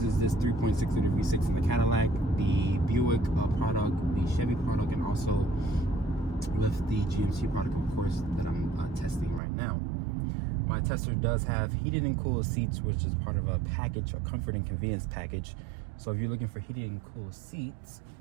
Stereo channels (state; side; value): drops out; left; at 9.4 s